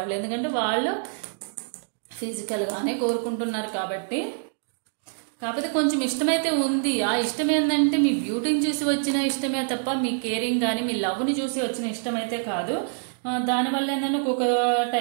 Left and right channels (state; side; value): silent; left; digital silence